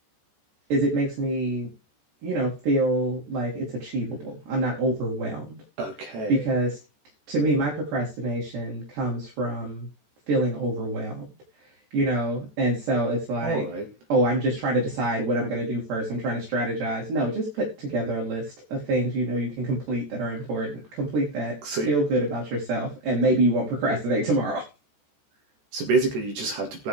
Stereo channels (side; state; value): left; late; 14 ms